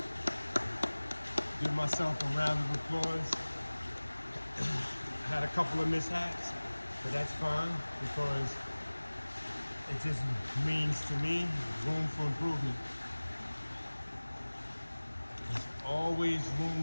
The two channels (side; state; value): both; inverted; correlation -1.00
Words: Give myself a round of applause. I had a couple of mishaps, but that's fine because it just means to me room for improvement. There's always